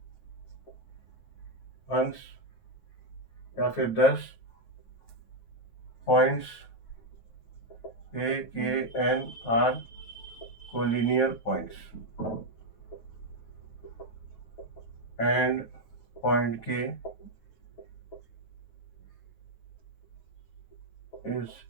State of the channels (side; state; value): right; late; 9.0 ms